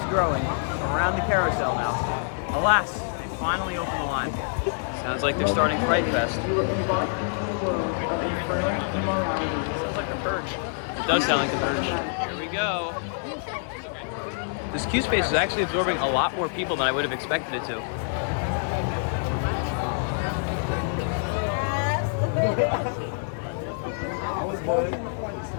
growing around the carousel now. Alas, they finally opened the line. Sounds like they're starting Fright Fest. Sounds like the Purge. It does sound like the Purge. Here we go. This queue space is actually absorbing a lot more people than I would have expected it to.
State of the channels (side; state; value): right; silent; 61 dB below the other